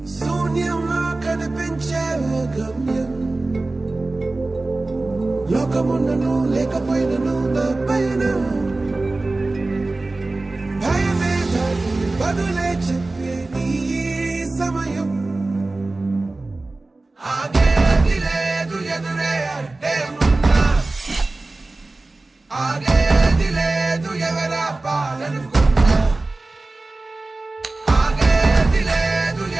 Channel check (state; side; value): quieter; left; 3.2 dB